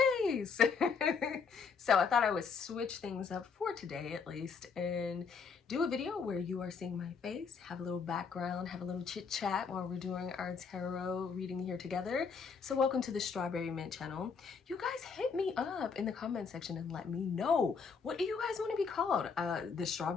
face. So I thought I would switch things up for today at least and do a video where you are seeing my face, have a little background, have a little chit chat while we're doing our tarot reading here together. So welcome to the Strawberry Mint channel. You guys hit me up in the comment section and let me know, what do you guys want to be called? The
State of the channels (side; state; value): right; quieter; 5.6 dB